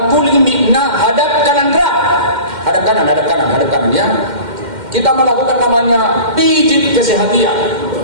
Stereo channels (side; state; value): left; late; 2.1 ms